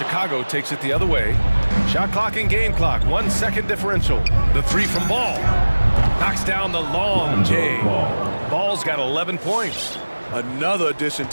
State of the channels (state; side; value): inverted; both; correlation -1.00